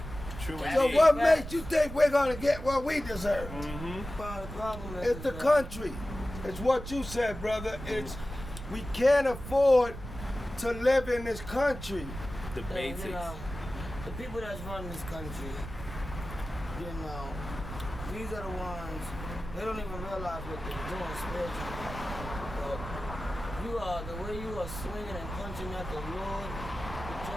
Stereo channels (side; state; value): right; noise; rumble, 10 dB below the sound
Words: True So indeed. what makes you think we're gonna get what we deserve? Mm-hmm. The problem It's the country. It's what you said, brother. It's we can't afford to live in this country. The basics. You know, the people that's running this country, you know, these are the ones, they don't even realize what they're doing spiritually. But the way you are swinging and punching at the Lord with